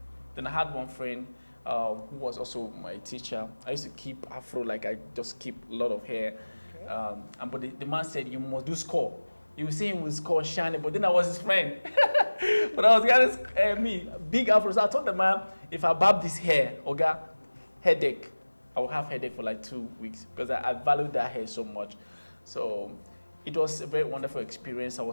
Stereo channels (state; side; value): inverted; both; correlation -1.00